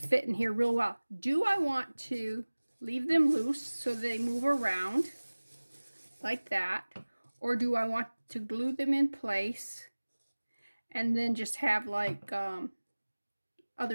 in here real well. Do I want to leave them loose so they move around like that? Or do I want to glue them in place and then just have like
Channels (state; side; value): inverted; both; correlation -1.00